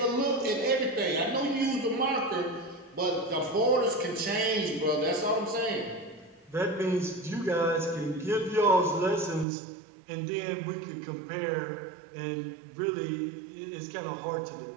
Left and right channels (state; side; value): drops out; left; at 9.5 s